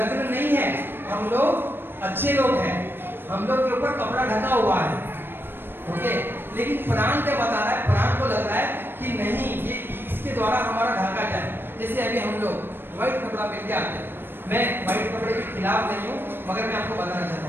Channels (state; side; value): late; left; 0.10 ms